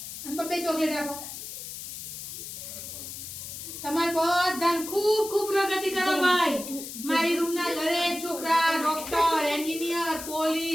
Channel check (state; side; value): noise; left; hiss, 9 dB below the sound